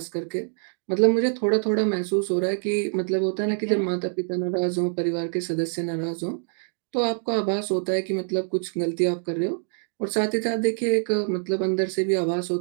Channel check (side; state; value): left; silent; digital silence